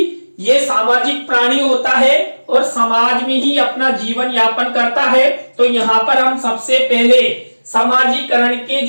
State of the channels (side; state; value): both; inverted; correlation -1.00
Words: ये सामाजिक प्राणी होता है और समाज में ही अपना जीवन यापन करता है। तो यहाँ पर हम सबसे पहले समाजीकरण के